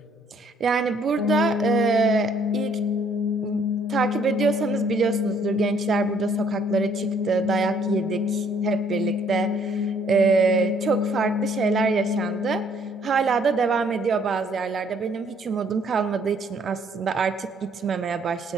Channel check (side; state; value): both; normal; correlation 0.64